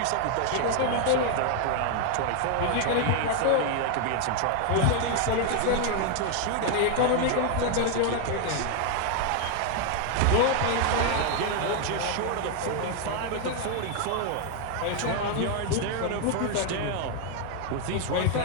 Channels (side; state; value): both; different; correlation 0.00